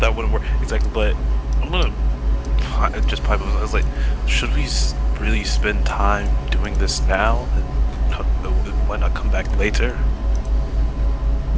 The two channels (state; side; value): identical; both; correlation 1.00